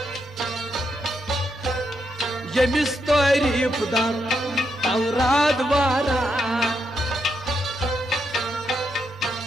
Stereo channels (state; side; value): normal; both; correlation 0.81